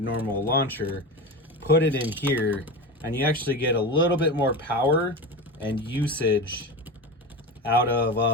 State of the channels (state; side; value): normal; both; correlation 0.24